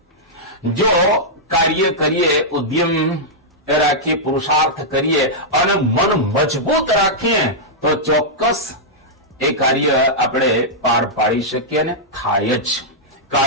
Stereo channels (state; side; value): normal; both; correlation -0.09